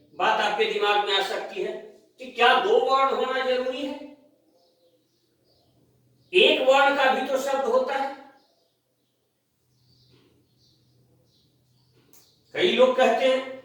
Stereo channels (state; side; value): identical; both; correlation 1.00